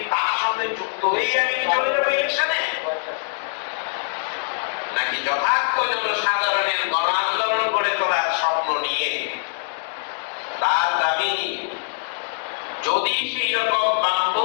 তার সঙ্গে যুক্ত হয়েই আমি কি চলে যাবো ইলেকশনে, নাকি যথার্থ জনসাধারণের গণ আন্দোলন গড়ে তোলার স্বপ্ন নিয়ে তার দাবি নিয়ে যদি সেই রকম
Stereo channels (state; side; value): silent; right; digital silence